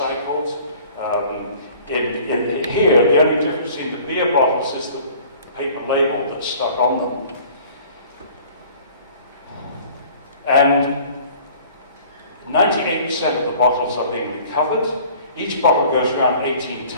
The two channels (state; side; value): inverted; both; correlation -0.50